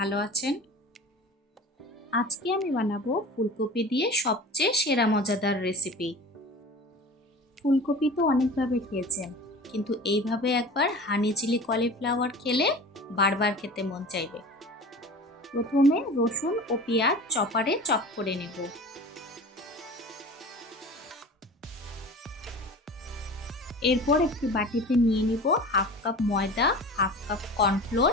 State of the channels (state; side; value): normal; both; correlation 0.37